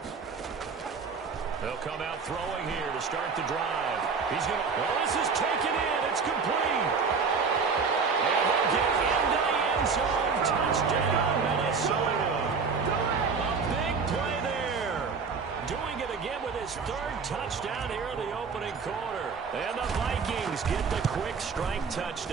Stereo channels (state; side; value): quieter; left; 5.3 dB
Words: They'll come out throwing here to start the drive. He's going to... Well, this is taken in. It's complete. And they'll get into the end zone. Touchdown, Minnesota. A big play there. Doing it again with his 3rd touchdown here in the opening quarter. And the Vikings get the quick strike